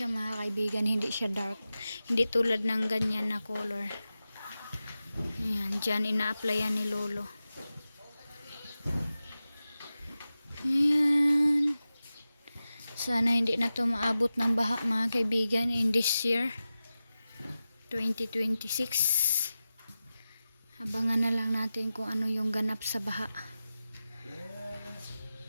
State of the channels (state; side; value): inverted; both; correlation -0.94